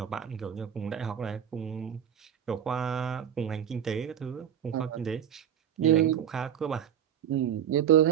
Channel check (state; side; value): quieter; left; 9.2 dB